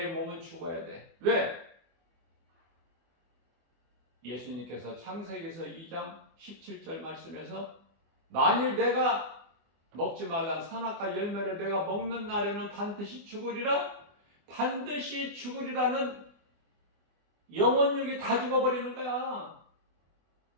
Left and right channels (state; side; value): late; left; 24 ms